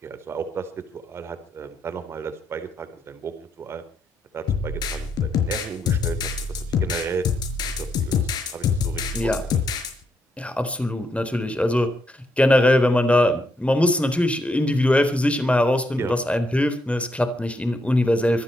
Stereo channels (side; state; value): both; normal; correlation 0.78